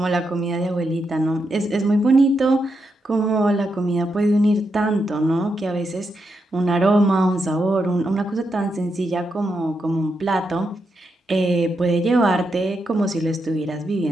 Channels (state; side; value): normal; both; correlation 0.83